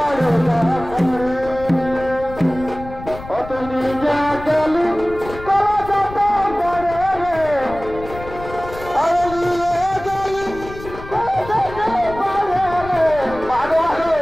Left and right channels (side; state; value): left; noise; rumble, 14 dB below the sound